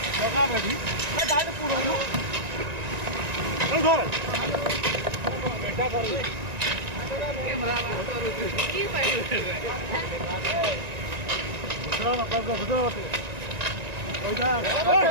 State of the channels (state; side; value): late; left; 1.9 ms